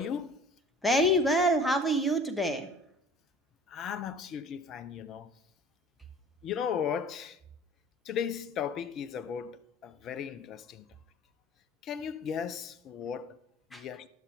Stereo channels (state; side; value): normal; both; correlation 0.46